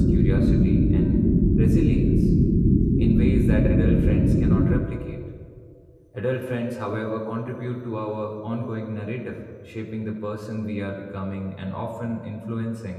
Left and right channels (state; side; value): identical; both; correlation 1.00